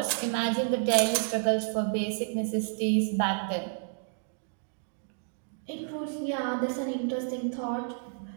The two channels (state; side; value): silent; left; digital silence